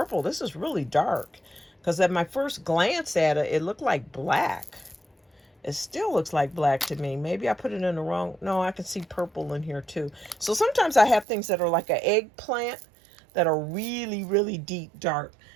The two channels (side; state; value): left; drops out; at 11.2 s